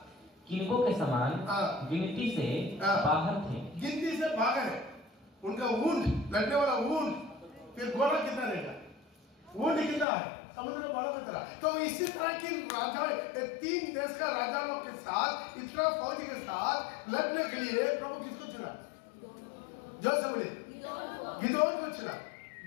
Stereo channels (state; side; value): drops out; right; at 10.1 s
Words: किनकों के समान गिनती से बाहर थे। गिनती से बाहर है उनका ऊंट, लड़ने वाला ऊंट। फिर घोड़ा कितना रहेगा? ऊंट कितना है? समुद्र का बालू की तरह। तो इसी तरह की राजा 3 देश का राजाओं के साथ, इतना फौज के साथ लड़ने के लिए प्रभु किसको चुना? जो से बोले गिदोन को चुना।